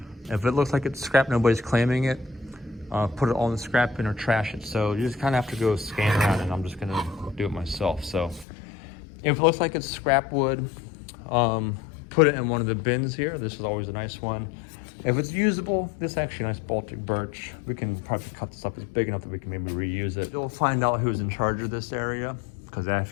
If it looks like it's scrap, nobody's claiming it, put it all in the scrap bin or trash it. So you just kind of have to go scan around, and I'm just gonna do it myself. So if it looks like it's scrap wood, put it in one of the bins here. This is always a nice one. If it's usable, this is actually a nice Baltic birch. We can probably cut this up. It's big enough that we can maybe reuse it. You'll find out who's in charge of this area, because I have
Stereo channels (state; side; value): drops out; right; at 8.5 s